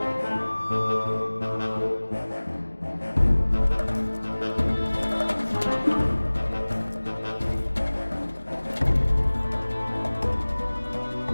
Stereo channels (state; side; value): inverted; both; correlation -1.00